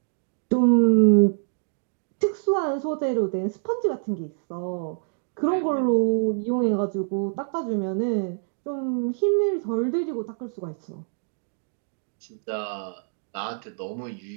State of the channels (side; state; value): left; silent; digital silence